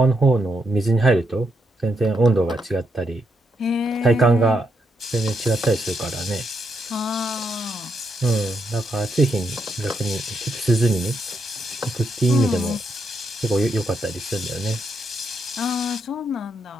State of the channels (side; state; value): both; normal; correlation 0.80